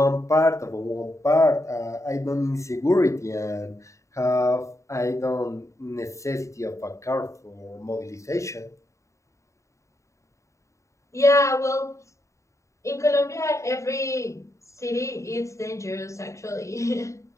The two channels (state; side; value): late; right; 0.15 ms